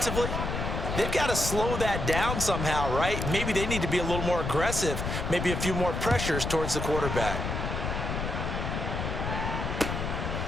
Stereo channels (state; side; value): noise; left; rumble, 3 dB below the sound